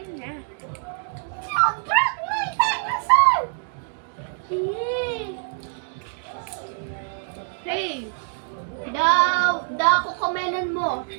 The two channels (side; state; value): left; silent; digital silence